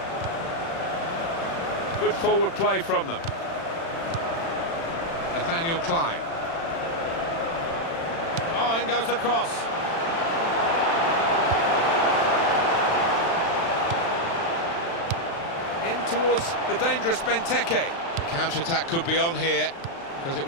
Good forward play from them. Nathaniel Klein. Oh, in goes the cross. In towards the dangerous Benteke. The counter-attack could be on here, because it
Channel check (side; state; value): right; late; 36 ms